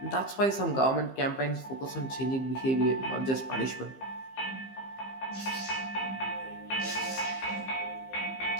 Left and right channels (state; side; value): late; right; 15 ms